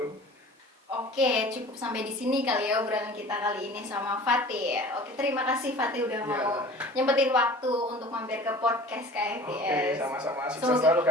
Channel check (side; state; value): both; normal; correlation 0.43